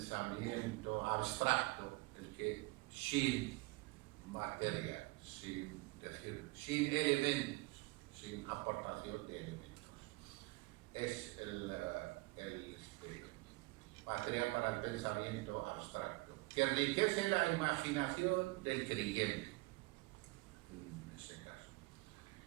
abstracto, el que sin materia, sin elementos, sin aportación de elementos, es material para el pensamiento abstracto, que enriquece la imaginación del creyente, en ese caso.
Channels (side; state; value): left; quieter; 23.1 dB